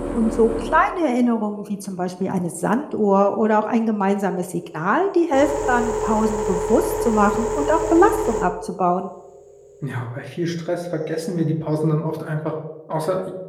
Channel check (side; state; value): both; identical; correlation 1.00